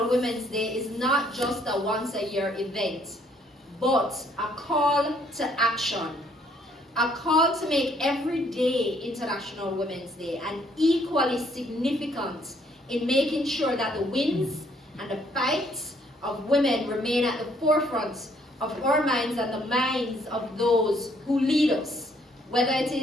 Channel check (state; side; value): normal; both; correlation 0.66